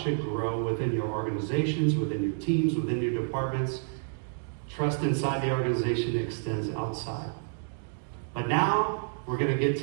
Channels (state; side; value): silent; left; digital silence